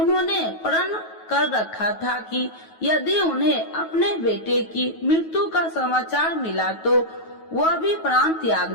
प्रण कर रखा था कि यदि उन्हें अपने बेटे की मृत्यु का समाचार मिला तो वह भी प्राण त्याग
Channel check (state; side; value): late; right; 9.3 ms